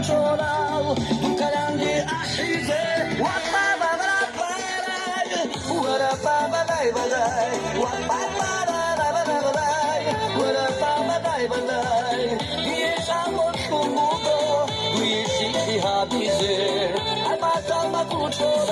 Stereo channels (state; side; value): identical; both; correlation 1.00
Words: tu kalandi ahize wa ba ba ba ba wa ra ba ba ba ba wa ba ba ba ba ba wa ra ba ba ba ba ye samo tumugo ye shiki habize ai batal ma